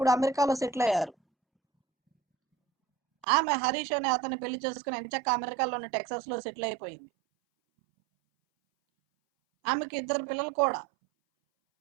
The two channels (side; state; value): left; drops out; at 3.2 s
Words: అమెరికాలో సెటిల్ అయ్యారు. ఆమె హరీష్ అనే అతన్ని పెళ్లి చేసుకుని ఎంచక్క అమెరికాలోని టెక్సాస్ లో సెటిల్ అయిపోయింది. ఆమెకి 2 పిల్లలు కూడా,